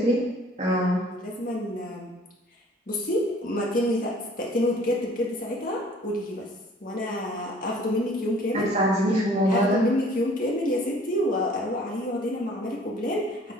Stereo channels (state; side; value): normal; both; correlation 0.54